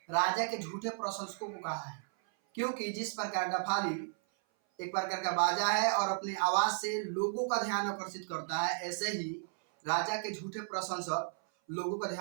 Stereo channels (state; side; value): silent; left; 55 dB below the other